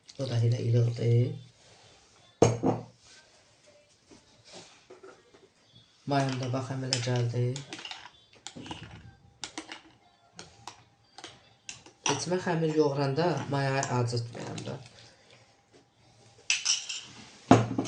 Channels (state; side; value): identical; both; correlation 1.00